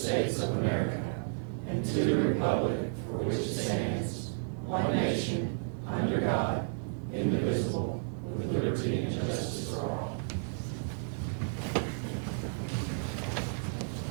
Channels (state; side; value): silent; left; digital silence